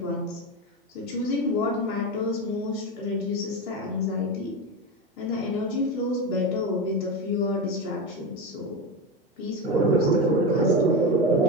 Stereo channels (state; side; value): normal; both; correlation 0.17